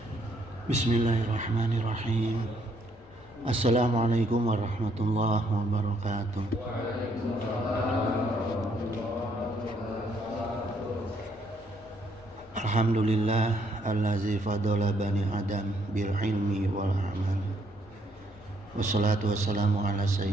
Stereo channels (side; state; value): left; noise; rumble, 25 dB below the sound